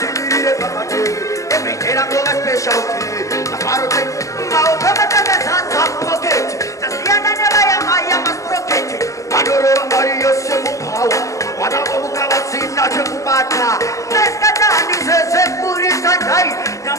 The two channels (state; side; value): late; right; 0.16 ms